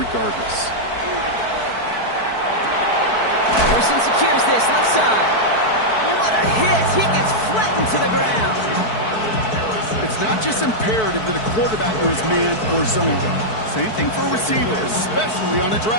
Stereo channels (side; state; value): right; late; 4.6 ms